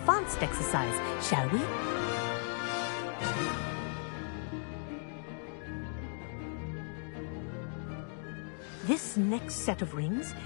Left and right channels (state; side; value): silent; right; 54 dB below the other